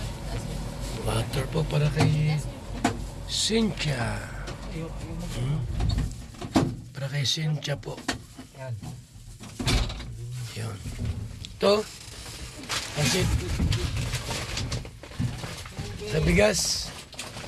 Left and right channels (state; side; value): identical; both; correlation 1.00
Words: Water po para kay Cynthia. Para kay Cynthia po. Yan. Yun. Ito. Kasi sa bigas.